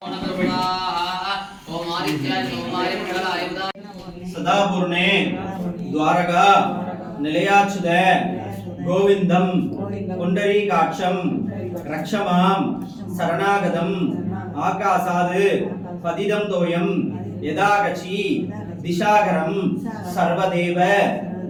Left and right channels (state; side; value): identical; both; correlation 1.00